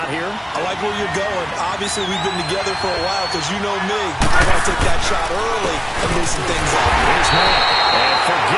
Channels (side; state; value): both; identical; correlation 1.00